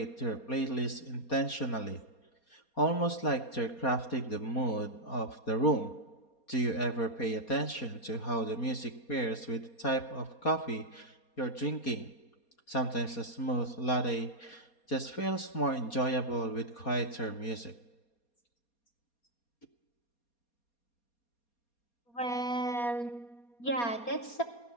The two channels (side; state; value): right; late; 4.2 ms